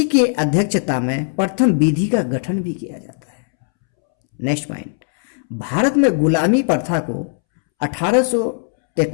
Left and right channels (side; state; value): right; silent; 67 dB below the other